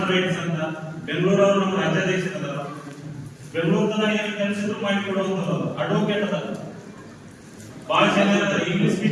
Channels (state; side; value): identical; both; correlation 1.00